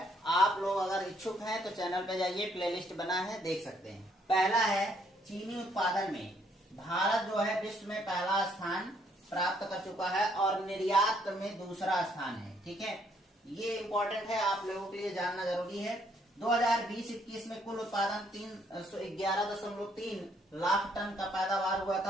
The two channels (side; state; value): both; normal; correlation 0.69